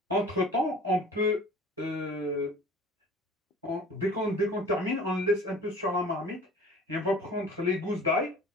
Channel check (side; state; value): both; normal; correlation 0.45